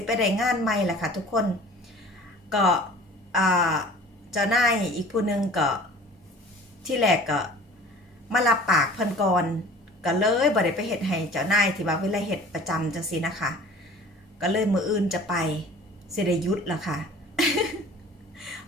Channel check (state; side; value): normal; both; correlation 0.45